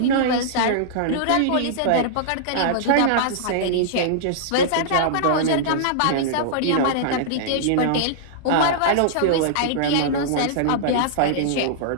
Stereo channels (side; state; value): both; different; correlation -0.02